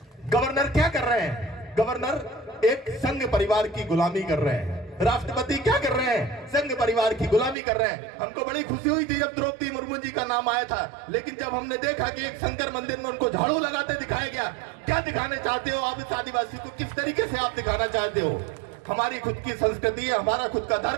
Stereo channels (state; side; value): drops out; left; at 7.6 s